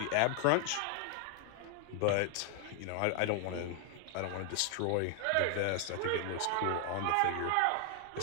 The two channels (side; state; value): both; different; correlation 0.00